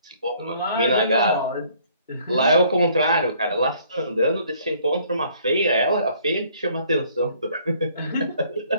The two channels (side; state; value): both; inverted; correlation -0.60